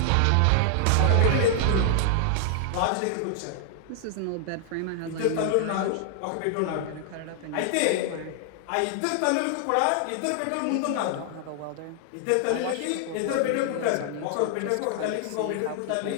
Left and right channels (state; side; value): different; both; correlation 0.00